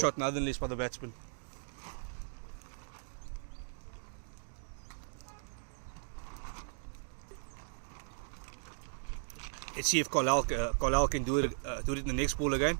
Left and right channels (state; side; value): silent; left; digital silence